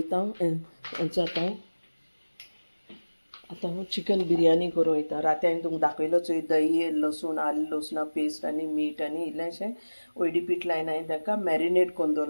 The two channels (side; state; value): both; inverted; correlation -1.00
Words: हेंचो आतां हांव चिकन बिरयानी करूं वयता राती हांवें तुमकां दाखयलो चोय दही लसूण आलें लसुणा पेस्ट आनी मीठ आनी इल्लेंशें ओयडी पीठ लायन हांवें ताका मॅरिनेट कोन्न